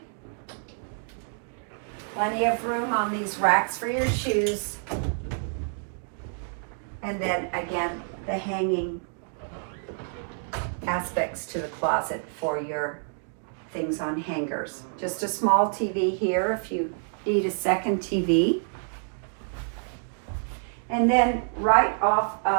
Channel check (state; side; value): silent; left; 60 dB below the other